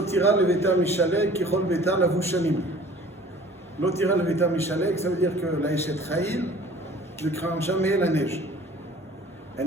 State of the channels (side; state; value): both; normal; correlation 0.48